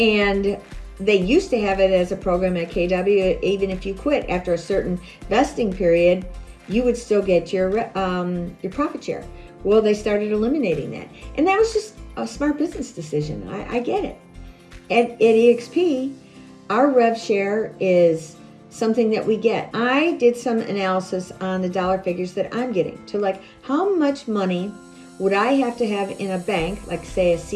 they used to have it as a program at KW, even if you quit after a certain vesting period, you would still get your profit share. Well, they started eliminating that. And that was just a smart business decision. I get it. At EXP, our rev share is something that we get. I did some analysis on the dollar figures that I'm getting to, like, how much money would I have to have in a bank, like say a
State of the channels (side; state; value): both; identical; correlation 1.00